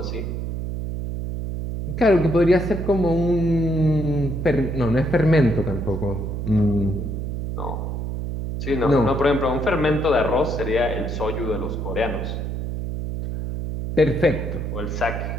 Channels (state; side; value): noise; right; hum, 4 dB below the sound